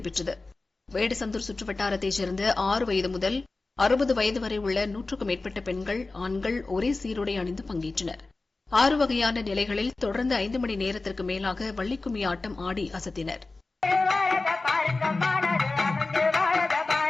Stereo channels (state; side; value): quieter; right; 3.4 dB